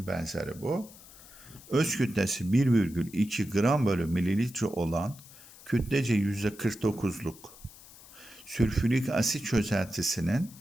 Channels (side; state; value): left; noise; hiss, 20 dB below the sound